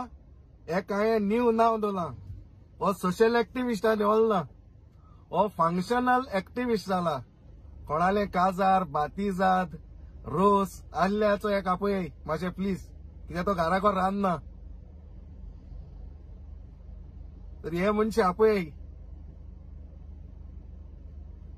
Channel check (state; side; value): identical; both; correlation 1.00